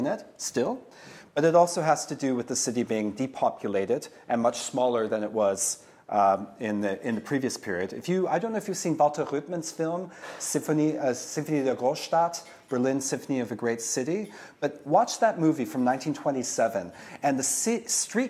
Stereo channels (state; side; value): identical; both; correlation 1.00